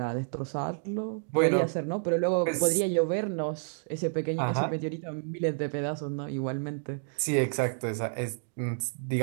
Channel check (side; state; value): left; silent; digital silence